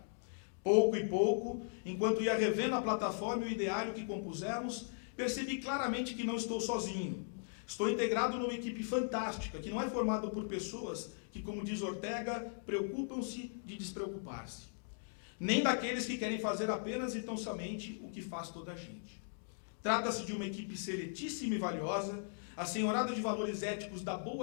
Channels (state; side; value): silent; right; digital silence